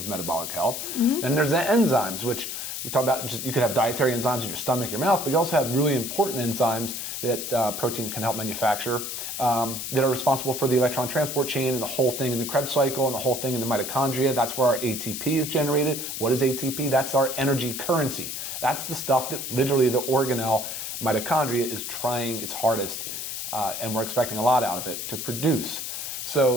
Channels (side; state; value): left; noise; hiss, 5 dB below the sound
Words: metabolic health. Mm-hmm. Then there's the enzymes, which we talk about. You could have dietary enzymes in your stomach, your mouth, but you also have really important enzymes that protein can help manufacture that are responsible for the electron transport chain and the whole thing in the Krebs cycle and the whole thing in the mitochondria. That's where our ATP is generated. What is ATP? That's our energy currency. That's the stuff that literally the organelle mitochondria is trying its hardest, and we're expecting a lot out of it, to produce.